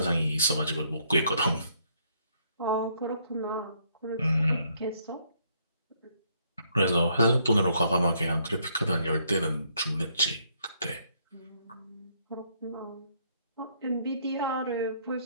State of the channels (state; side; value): inverted; both; correlation -0.70